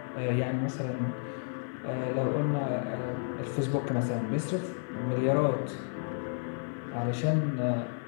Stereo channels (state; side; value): silent; right; digital silence